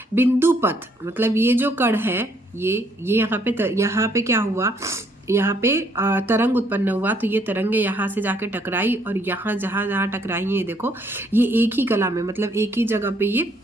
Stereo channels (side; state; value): both; normal; correlation 0.67